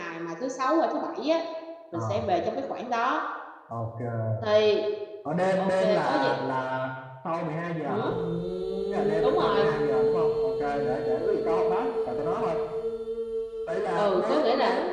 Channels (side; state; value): both; identical; correlation 1.00